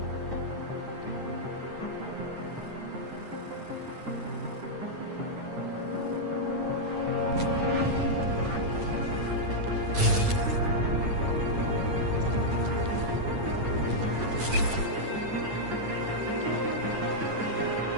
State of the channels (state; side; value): late; left; 8.9 ms